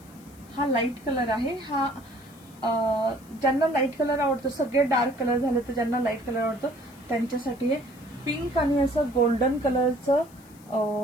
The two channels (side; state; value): left; noise; hiss, 26 dB below the sound